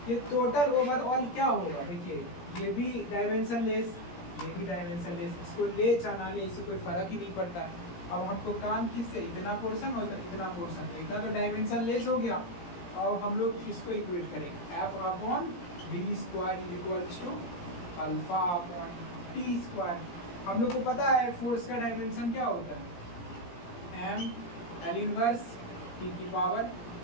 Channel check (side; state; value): right; late; 17 ms